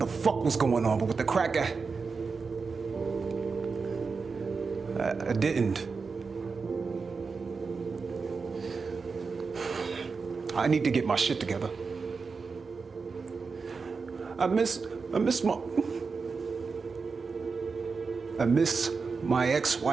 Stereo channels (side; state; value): left; quieter; 4.8 dB